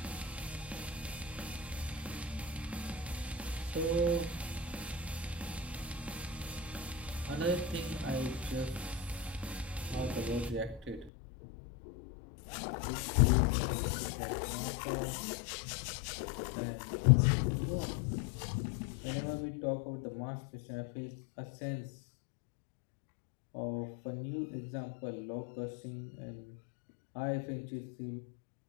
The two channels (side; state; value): right; drops out; at 11.1 s